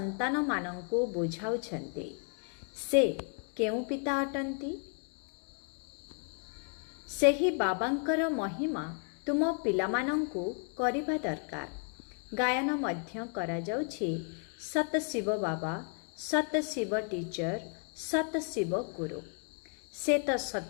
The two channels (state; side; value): quieter; right; 38.7 dB